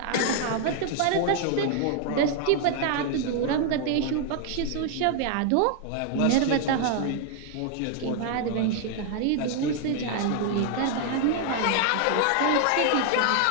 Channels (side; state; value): both; different; correlation 0.00